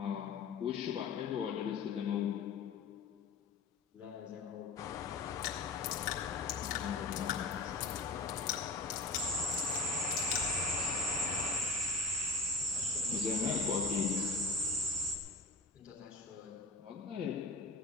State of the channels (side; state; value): right; quieter; 3.4 dB